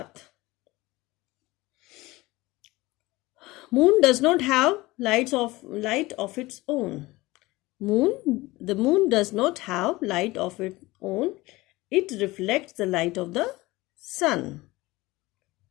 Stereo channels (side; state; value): right; quieter; 20.3 dB